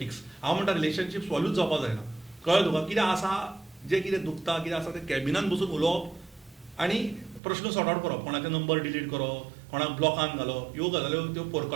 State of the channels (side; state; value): left; drops out; at 7.4 s